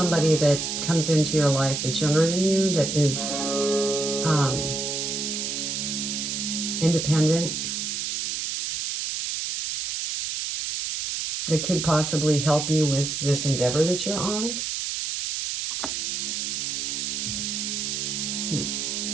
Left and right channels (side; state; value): right; noise; hiss, 2 dB below the sound